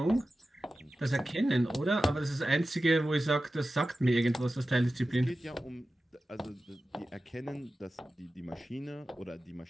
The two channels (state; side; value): normal; both; correlation 0.94